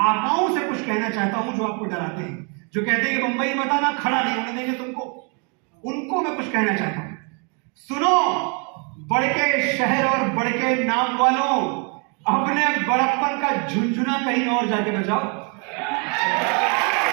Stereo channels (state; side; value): quieter; left; 35.9 dB